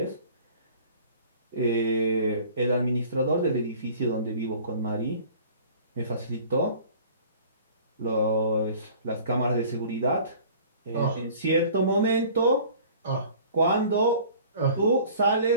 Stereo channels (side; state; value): both; inverted; correlation -0.48